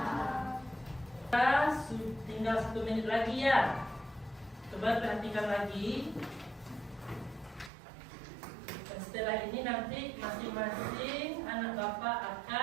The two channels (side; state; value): left; drops out; at 7.7 s